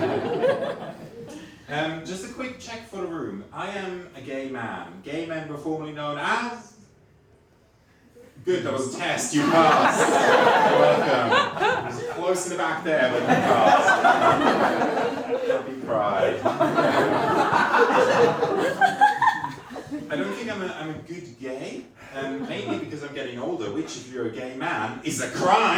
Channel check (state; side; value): identical; both; correlation 1.00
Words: Just a quick check for the room. I am a gay man. Gay men were formerly known as... Good, that was a test, you passed. You're welcome. It was close in the back there, but you passed. Happy pride. I don't think I'm a good gay, mainly because I'm getting older, which, if you're a gay man, is a